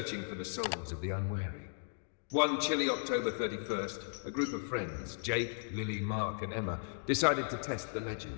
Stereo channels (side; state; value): right; silent; digital silence